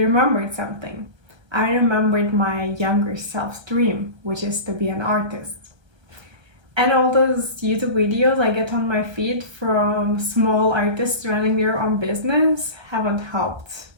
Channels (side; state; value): left; late; 1.3 ms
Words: remembered something. I remembered my younger self's dream, which is to be an artist. And all those YouTube videos I get on my feed from small artists running their own business haven't helped